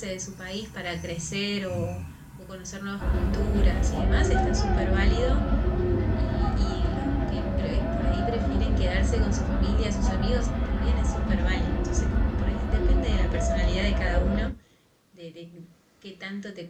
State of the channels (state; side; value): identical; both; correlation 1.00